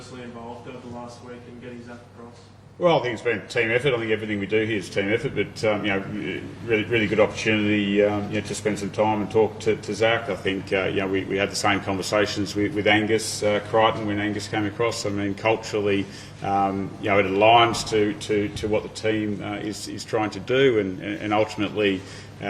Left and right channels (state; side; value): identical; both; correlation 1.00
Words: involved over the last week in getting Zac across? Well, I think it's been a team effort. I think everything we do here is team effort, but really good opportunity to spend some time and talk to Zac. I think we had the same conversations with Angus Crichton when Angus came across. I mean, culturally, it aligns to what the team is trying to do, and ultimately